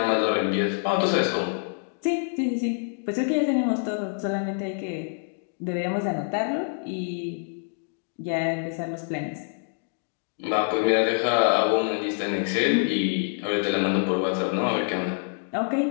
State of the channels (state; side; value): silent; right; 61 dB below the other